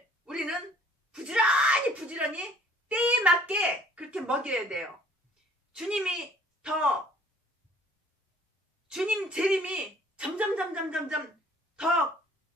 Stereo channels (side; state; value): both; normal; correlation 0.56